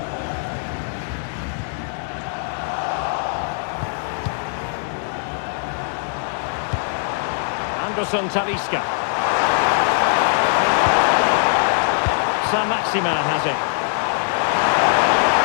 Anderson Talisca. Maximin has it.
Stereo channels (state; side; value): silent; right; digital silence